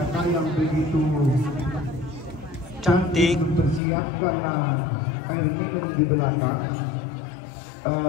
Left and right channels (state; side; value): drops out; right; at 3.8 s